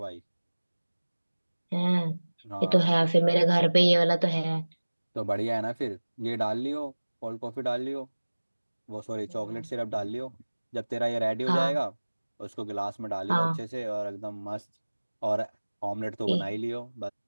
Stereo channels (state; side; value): inverted; both; correlation -1.00